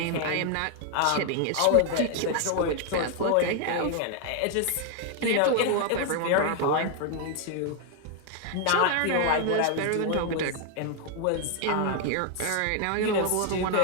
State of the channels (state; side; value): different; both; correlation 0.00